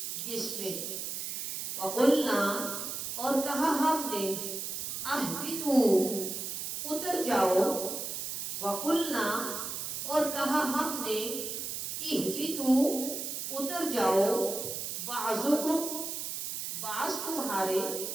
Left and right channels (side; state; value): right; noise; hiss, 4 dB below the sound